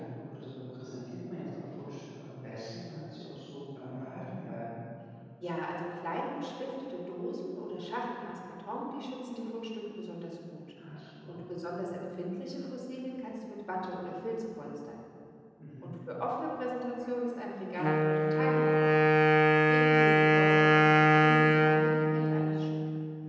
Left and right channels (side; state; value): both; identical; correlation 1.00